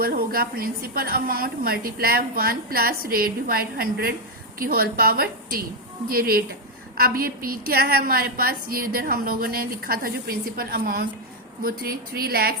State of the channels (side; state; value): both; normal; correlation 0.02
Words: होगा principal amount multiply 1 plus rate divide 100 की होल पावर टी, ये रेट है। अब ये पी क्या है हमारे पास, ये इधर हम लोगों ने लिखा था जो प्रिंसिपल अमाउंट वो